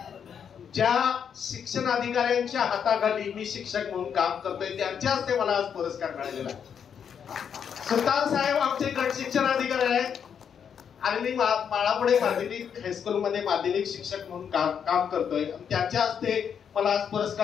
ज्या शिक्षण अधिकाऱ्यांच्या हाताखाली मी शिक्षक म्हणून काम करतोय त्यांच्या हस्ते मला आज पुरस्कार मिळालेला आहे. सुतार साहेब आमचे गट शिक्षण अधिकारी आहेत आणि मी माळापुणे माध्यमिक हायस्कूलमध्ये माध्यमिक शिक्षक म्हणून काम करतोय. त्यांच्या हस्ते मला आज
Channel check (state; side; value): quieter; right; 7.6 dB